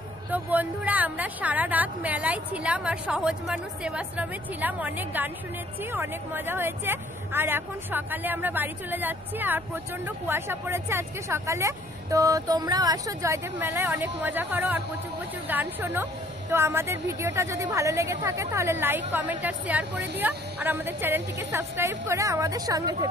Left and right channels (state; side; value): noise; left; rumble, 29 dB below the sound